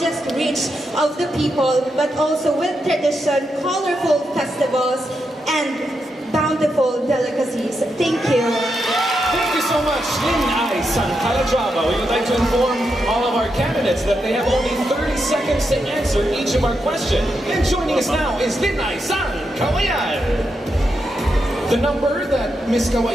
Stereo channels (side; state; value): both; normal; correlation 0.84